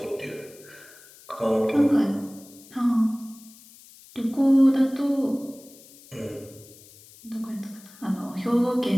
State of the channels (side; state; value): left; noise; hiss, 22 dB below the sound